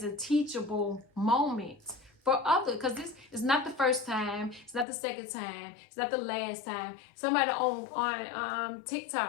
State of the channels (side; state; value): right; drops out; at 4.9 s